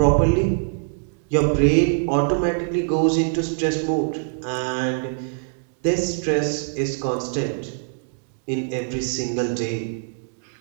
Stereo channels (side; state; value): left; silent; digital silence